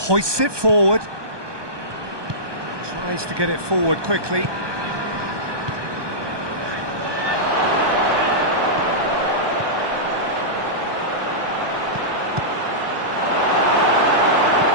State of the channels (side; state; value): left; late; 1.2 ms